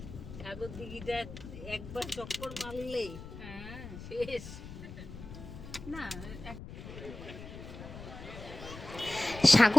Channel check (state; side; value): noise; left; rumble, 12 dB below the sound